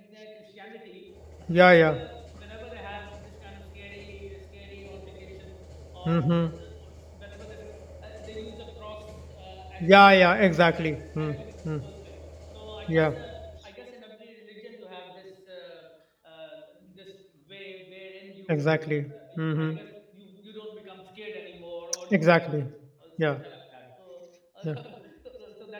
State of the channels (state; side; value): identical; both; correlation 1.00